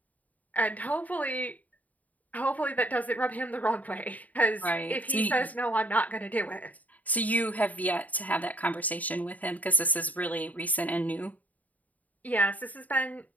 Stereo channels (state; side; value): late; right; 0.074 ms